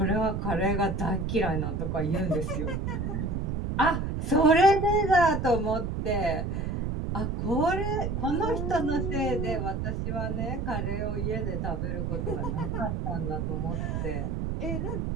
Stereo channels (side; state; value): right; noise; rumble, 1 dB below the sound